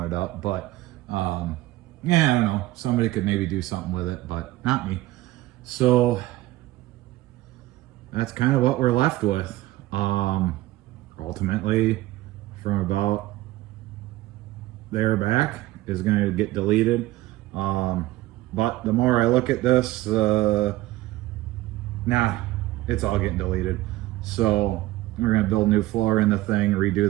up, but yeah, I don't know. Somebody could maybe do something with it, but not me. So that's kind of what we're left with. Ultimately, from about there back is going to get deleted. But the more I look at this, nah, it's all getting deleted. So we're going to build new floor in the thing, redo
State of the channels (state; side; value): quieter; left; 17.0 dB